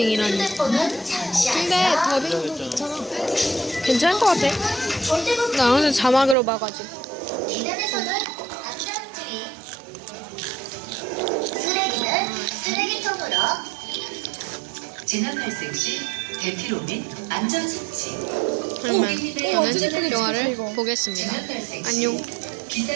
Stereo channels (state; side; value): drops out; left; at 6.4 s